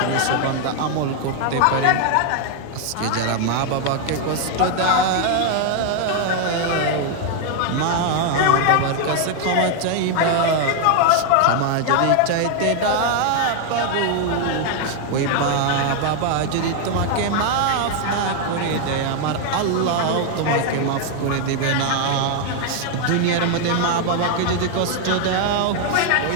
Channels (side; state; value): both; different; correlation 0.00